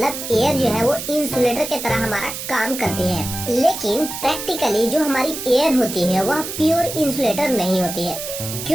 एयर जो है वो इंसुलेटर की तरह हमारा काम करती है। लेकिन प्रैक्टिकली जो हमारी एयर होती है वह प्योर इंसुलेटर नहीं होती है।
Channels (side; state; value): right; noise; hiss, 7 dB below the sound